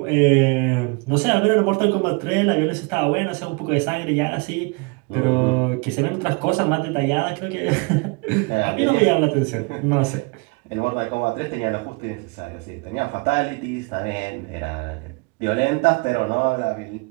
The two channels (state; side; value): quieter; left; 29.7 dB